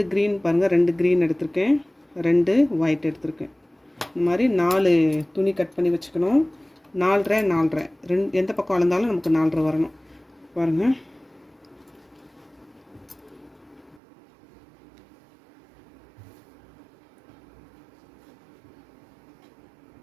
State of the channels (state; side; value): drops out; left; at 14.0 s